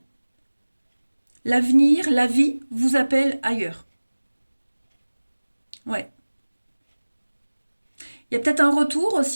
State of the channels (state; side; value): inverted; both; correlation -1.00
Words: L'avenir, la vie vous appelle ailleurs. Ouais. Il y a peut-être un retour